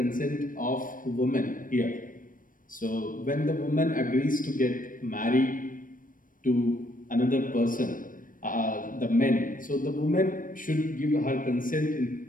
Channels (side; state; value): right; late; 0.40 ms